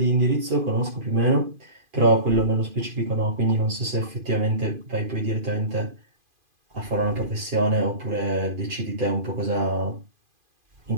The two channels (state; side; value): late; left; 2.5 ms